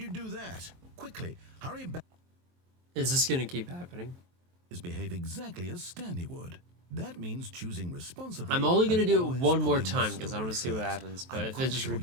do that? Quickly, hurry back. Is this gonna keep happening? Behave exactly as Stanley would. That means choosing responsibly. I'm only gonna and do it always one more putting the time because I story want to see what first. happens. But I'm if it quite just sure you'll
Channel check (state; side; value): late; left; 23 ms